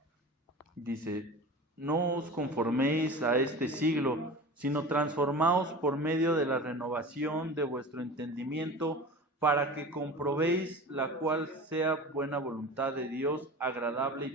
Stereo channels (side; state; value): both; normal; correlation 0.34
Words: Dice, no os conforméis a este siglo, sino transformaos por medio de la renovación de vuestro entendimiento, para que comprobéis la cual sea buena voluntad de Dios, agradable